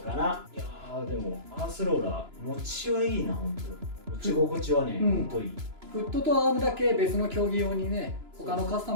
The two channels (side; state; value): left; late; 2.9 ms